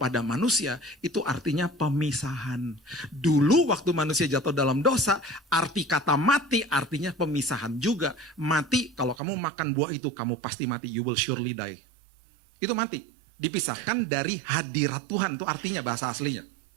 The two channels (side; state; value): left; drops out; at 9.2 s